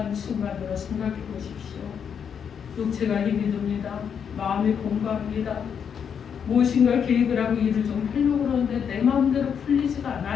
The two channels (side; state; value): right; quieter; 7.4 dB